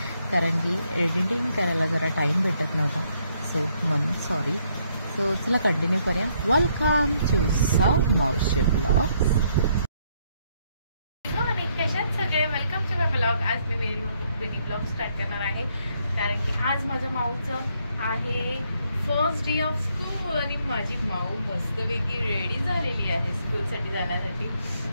कारण की एडिटिंग करायला जरा टाईम भेटत नव्हता, सो म्हणून सॉरी. सो चला कंटिन्यू करूया. वेलकम टू साऊ मावशी ब्लॉग. कशात सगळे वेलकम टू माय ब्लॉग. आज मी मिनी ब्लॉग स्टार्ट करणार आहे कारण की आज माझ्या माऊचं आहे फर्स्ट डे ऑफ स्कूल आणि माझी माऊ मस्तपैकी रेडी झालेली आहे स्कूलसाठी जाण्यासाठी.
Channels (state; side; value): inverted; both; correlation -0.72